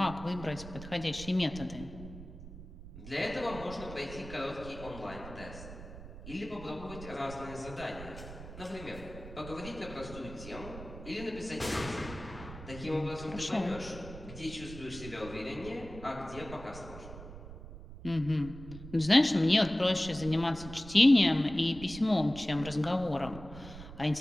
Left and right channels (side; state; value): right; noise; rumble, 13 dB below the sound